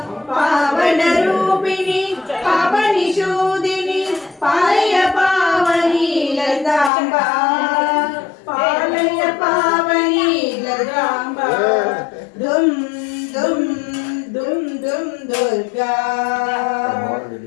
పావన రూపిణి పాపనిషూదిని పాలయ పావని లలితాంబ పాలయ పావని లలితాంబ దుమ్ దుమ్ దుమ్ దుమ్ దుర్గా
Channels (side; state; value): right; drops out; at 6.9 s